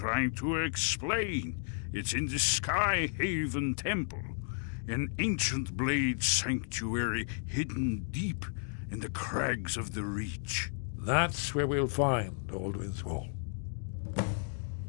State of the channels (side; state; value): right; silent; digital silence